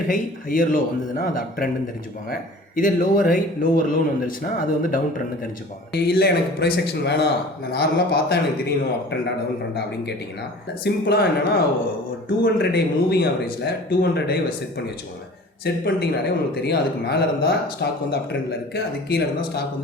ஹை ஹையர் லோ வந்ததுன்னா அது அப் ட்ரெண்ட் தெரிஞ்சுப்பாங்க. இதே லோவர் ஹை லோவர் லோன்னு வந்துருச்சுன்னா அது வந்து டவுன் ட்ரெண்ட் தெரிஞ்சுப்பாங்க. இல்லை எனக்கு ப்ரைஸ் ஆக்ஷன் வேணாம், நான் நார்மலாக பார்த்தா எனக்கு தெரியணும் அப் ட்ரெண்டா டவுன் ட்ரெண்டா அப்படின்னு கேட்டிங்கன்னா, சிம்பிளாக என்னன்னா, ஒரு 200 டே மூவிங் ஆவரேஜில் 200 டே செட் பண்ணி வச்சுக்கோங்க. செட் பண்ணிட்டீங்கனாலே உங்களுக்கு தெரியும், அதுக்கு மேலே இருந்தால் ஸ்டாக் வந்து அப் ட்ரெண்டில் இருக்குது, அதுக்கு கீழே இருந்தால் ஸ்டாக்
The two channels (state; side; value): normal; both; correlation 0.43